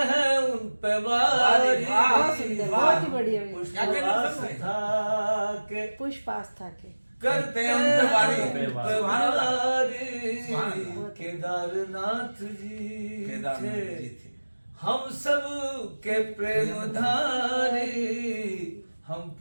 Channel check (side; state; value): both; inverted; correlation -1.00